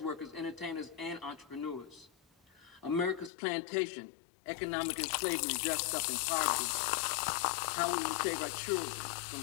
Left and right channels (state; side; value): drops out; right; at 3.3 s